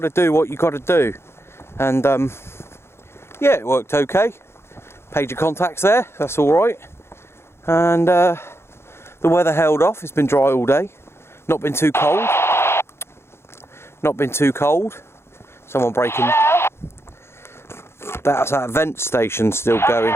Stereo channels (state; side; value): late; right; 0.12 ms